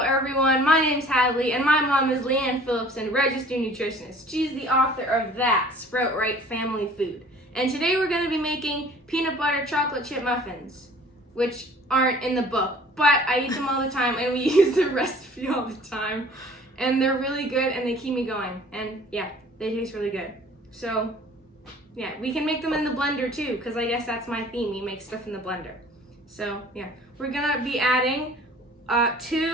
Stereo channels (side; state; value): both; normal; correlation 0.50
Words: everyone, my name's Hadley and my mom is Leanne Phillips and registered nutritionist. She's the author of That Sprout Right Family Food. And today we're going to be making peanut butter chocolate chip muffins, which aren't in the book, but I eat them all the time and we use the recipe all the time. And they're really good and they keep me going. And yeah, they taste really good. So yeah, we can make them in the blender too, because I guess that's my theme, we make stuff in the blender. So yeah, we're going to be adding